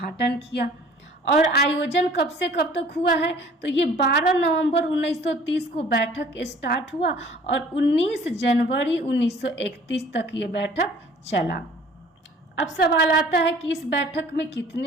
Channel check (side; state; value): both; normal; correlation 0.51